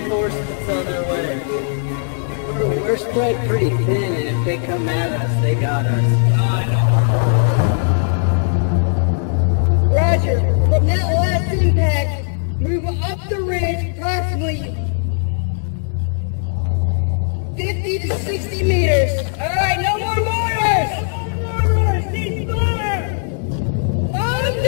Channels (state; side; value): silent; right; digital silence